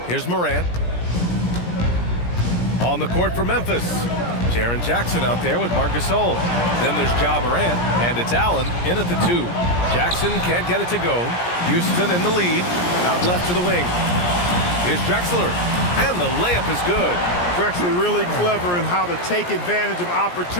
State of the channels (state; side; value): late; right; 17 ms